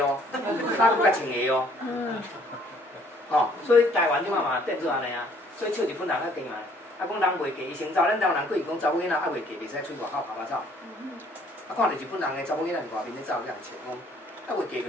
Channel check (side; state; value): both; normal; correlation 0.60